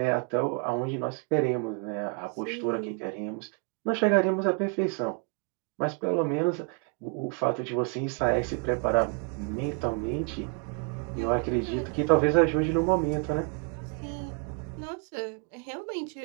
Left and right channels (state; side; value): quieter; left; 34.4 dB